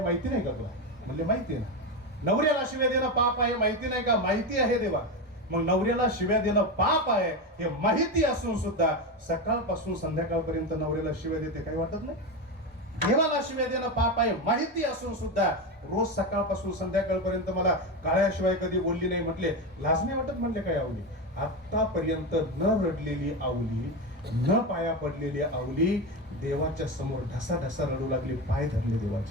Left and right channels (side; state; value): both; normal; correlation 0.16